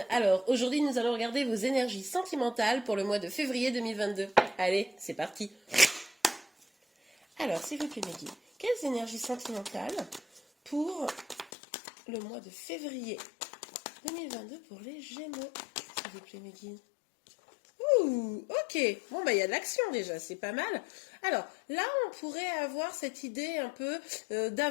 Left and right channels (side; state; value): right; drops out; at 11.5 s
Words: Alors aujourd'hui nous allons regarder vos énergies sentimentales pour le mois de février 2022. Allez, c'est parti. Alors s'il vous plaît mes guides, quelles énergies sentimentales pour le mois de février 2022 pour les Gémeaux, s'il vous plaît mes guides. Ouh, ok, bon bah il y a de l'action déjà, c'est pas mal. Alors là on pourrait avoir cette idée un peu